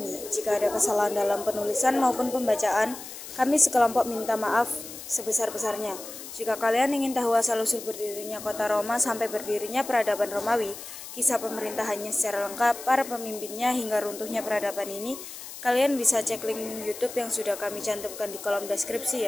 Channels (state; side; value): noise; left; hiss, 12 dB below the sound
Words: Jika ada kesalahan dalam penulisan maupun pembacaan, kami sekelompok minta maaf sebesar-besarnya. Jika kalian ingin tahu asal-usul berdirinya kota Roma sampai berdirinya peradaban Romawi, kisah pemerintahannya secara lengkap, para pemimpinnya hingga runtuhnya peradaban ini, kalian bisa cek link YouTube yang sudah kami cantumkan di kolom deskripsi